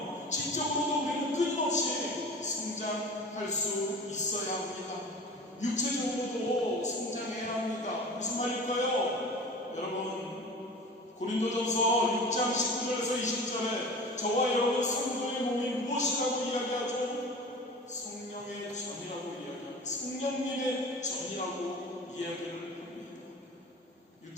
지적으로도 우리는 끊임없이 성장할 수 있어야 합니다. 육체적으로도 성장해야 합니다. 무슨 말일까요? 여러분 고린도전서 6장 19절에서 20절에 저와 여러분 성도의 몸이 무엇이라고 이야기하죠? 성령의 전이라고 이야기합니다. 성령님의 전이라고 이야기를 합니다.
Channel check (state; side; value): normal; both; correlation 0.38